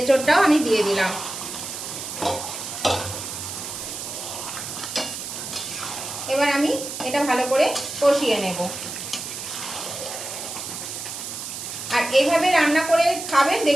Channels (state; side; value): noise; right; hiss, 7 dB below the sound